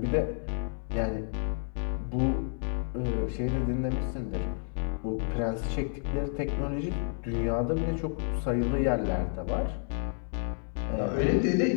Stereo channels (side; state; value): right; silent; 56 dB below the other